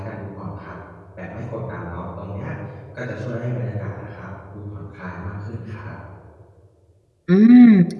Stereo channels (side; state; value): both; identical; correlation 1.00